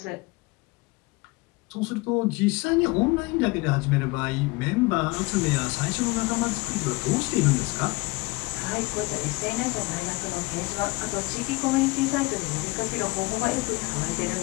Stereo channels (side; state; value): right; quieter; 24.4 dB